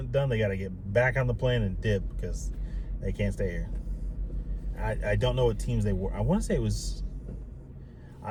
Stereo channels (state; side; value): identical; both; correlation 1.00